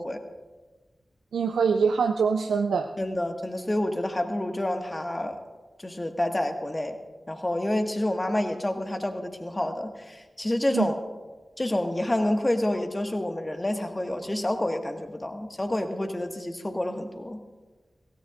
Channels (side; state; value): both; normal; correlation 0.93